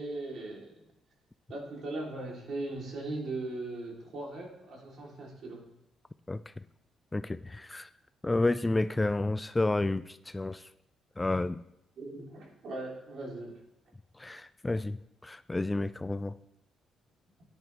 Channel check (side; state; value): both; normal; correlation 0.95